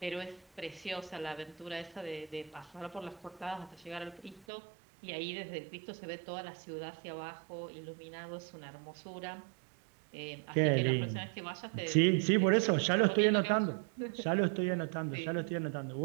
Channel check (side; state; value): left; drops out; at 4.5 s